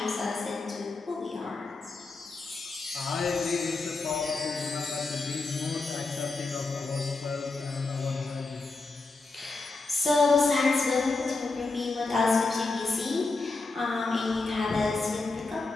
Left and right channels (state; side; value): quieter; right; 3.6 dB